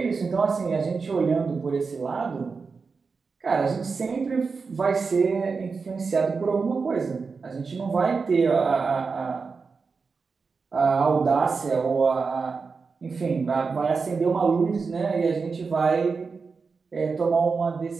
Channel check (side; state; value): left; quieter; 4.8 dB